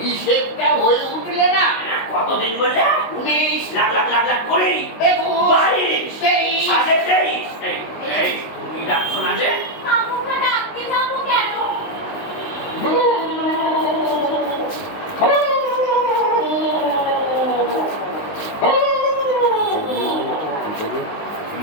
হিসেবটা হয়ে উঠলে না। কতদিন বললে? 19 লাখ লাখ লাখ লাখ করে 22 23 সাড়ে 23। এই তুমি ডাকছো না যে? আমাকে ডাকতে যাবো কেন?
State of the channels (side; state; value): right; late; 19 ms